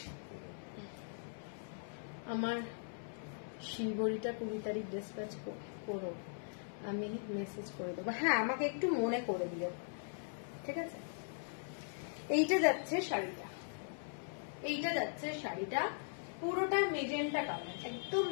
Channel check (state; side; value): silent; right; 51 dB below the other